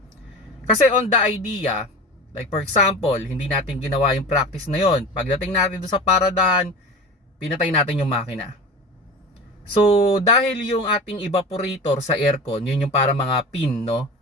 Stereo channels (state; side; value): normal; both; correlation 0.32